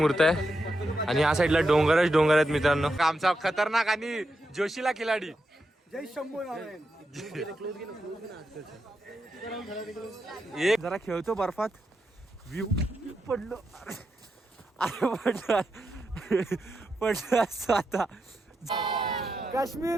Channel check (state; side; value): normal; both; correlation 0.86